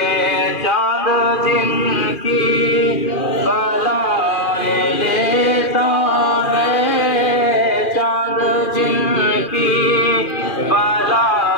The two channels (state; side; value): late; right; 2.4 ms